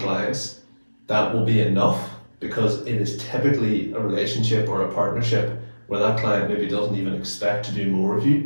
clients, that will be enough, because it is typically a relationship or a partnership where that client maybe doesn't even expect to do more of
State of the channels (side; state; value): both; inverted; correlation -1.00